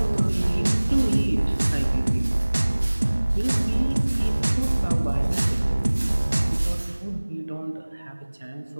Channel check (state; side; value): inverted; both; correlation -1.00